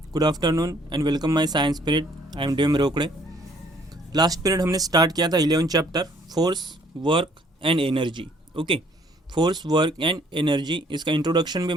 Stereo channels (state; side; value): normal; both; correlation 0.62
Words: good afternoon and welcome my science period. I am DM Rokade. Last period हमने start किया था 11 chapter force work and energy. Okay, force work and energy, इसका introduction भी